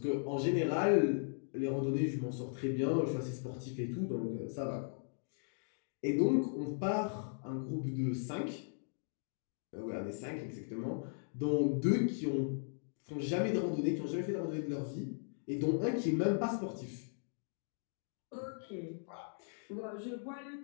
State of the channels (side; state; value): right; silent; digital silence